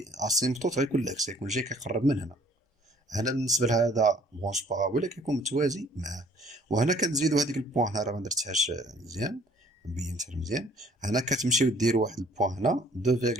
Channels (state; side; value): normal; both; correlation 0.57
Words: اسيمبتوت غيكون العكس، يكون جاي كيقرب من هنا. هنا بالنسبه لهذا برونش بارابوليك كيكون متوازي معاه. وهنا كنزيدو هذيك البوان، هنا راه ما درتهاش مزيان، مبينتها مزيان. هنا كتمشيو ديروا واحد البوان هنا